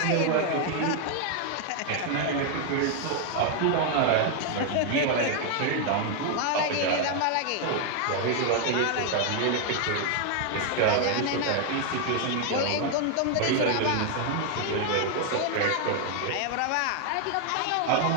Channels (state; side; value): different; both; correlation 0.00